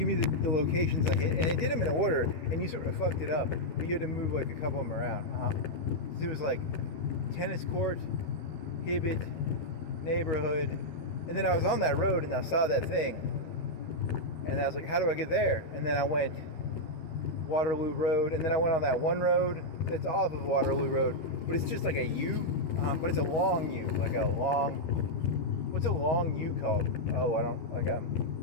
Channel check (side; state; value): right; late; 12 ms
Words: me the locations I hit," and it did them in order, and you sort of fucked it up, but you had to move like a couple of them around. So it was like tennis court, Hibbett, neighborhood, and then I was on that road and I saw that thing, and I was like, "How do I get there?" And then I went Waterloo Road, and then I went on that one road that's off of Waterloo Road, but it's just like a U, but it's a long U, like a long. What's a long U called? Oh, I don't,